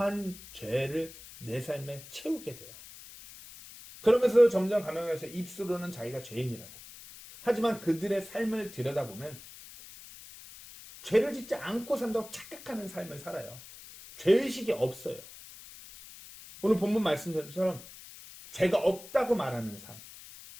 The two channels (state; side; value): noise; left; hiss, 17 dB below the sound